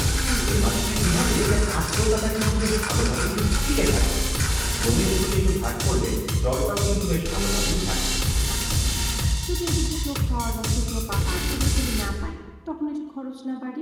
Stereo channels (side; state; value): both; identical; correlation 1.00